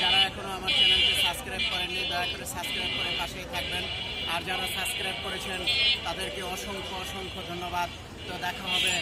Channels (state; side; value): identical; both; correlation 1.00